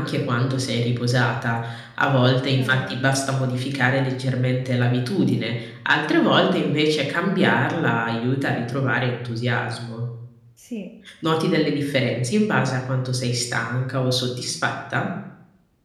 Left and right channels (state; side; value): identical; both; correlation 1.00